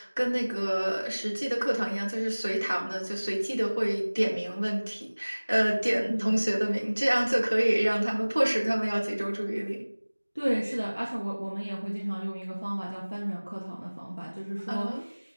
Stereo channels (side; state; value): both; inverted; correlation -1.00